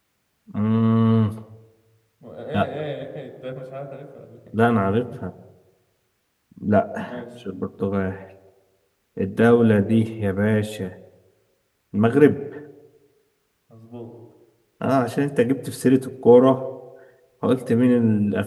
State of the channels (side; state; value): both; identical; correlation 1.00